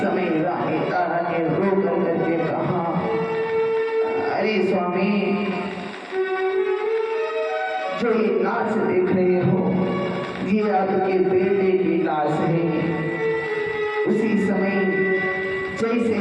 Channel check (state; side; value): identical; both; correlation 1.00